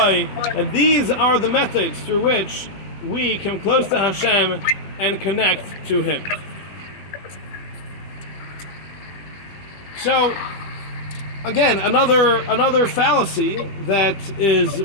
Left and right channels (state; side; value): late; right; 20 ms